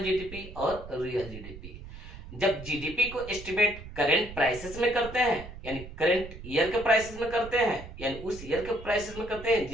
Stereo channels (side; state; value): right; noise; rumble, 13 dB below the sound